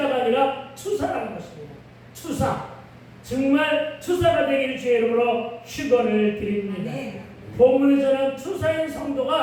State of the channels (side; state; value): both; identical; correlation 1.00